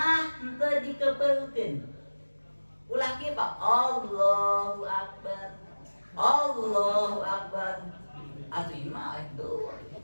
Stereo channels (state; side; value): inverted; both; correlation -1.00